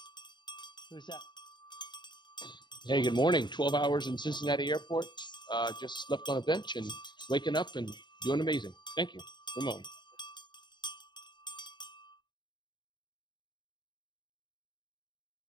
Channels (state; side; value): late; right; 0.22 ms